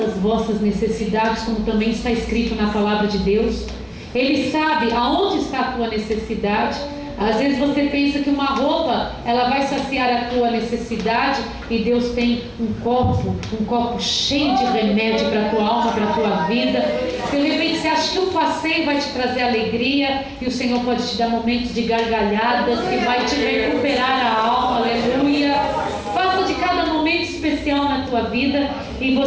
vossas necessidades, como também está escrito na palavra de Deus. Ele sabe aonde está a tua necessidade. Às vezes você pensa que uma roupa ela vai saciar a tua necessidade, e Deus tem um copo cheio de remédio para a tua alma, para a tua vida. De repente você acha que um passeio vai te trazer alegria, e o Senhor pode te dar momentos de gargalhadas que vai te recuperar a alma. Aleluia. Faça de cada momento especial na tua vida, e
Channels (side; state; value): both; identical; correlation 1.00